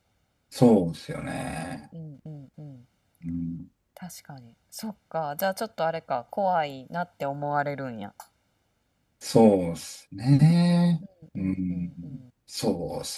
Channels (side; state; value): both; identical; correlation 1.00